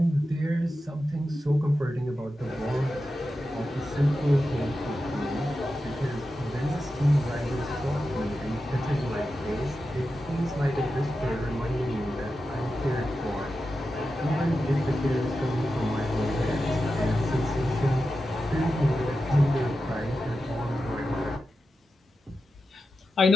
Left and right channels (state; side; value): normal; both; correlation 0.91